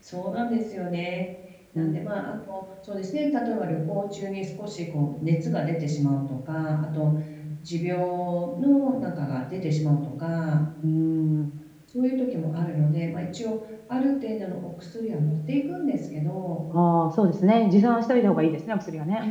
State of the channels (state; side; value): identical; both; correlation 1.00